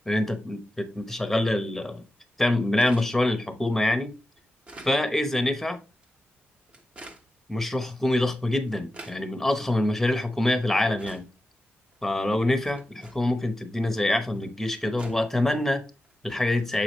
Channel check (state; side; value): normal; both; correlation 0.92